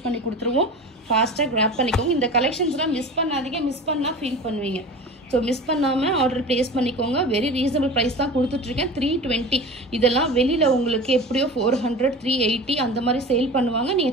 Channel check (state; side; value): normal; both; correlation 0.35